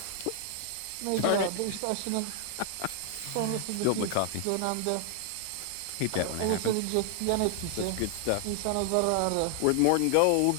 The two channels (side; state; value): both; different; correlation 0.00